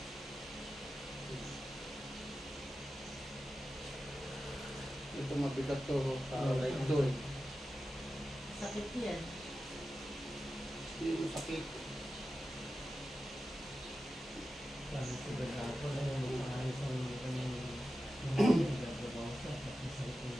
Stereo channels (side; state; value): both; normal; correlation 0.92